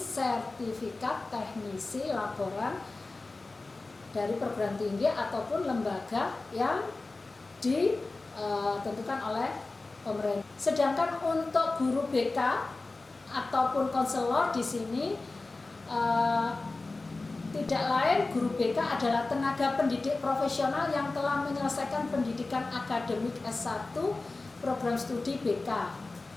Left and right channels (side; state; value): right; quieter; 3.4 dB